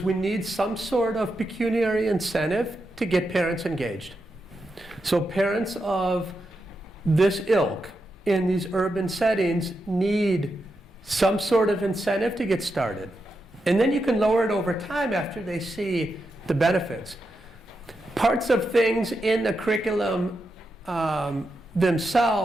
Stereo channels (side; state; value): both; normal; correlation 0.86